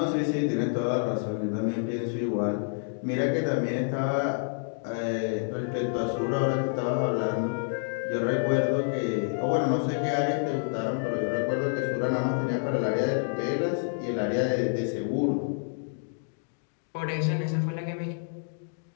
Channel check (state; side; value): silent; right; digital silence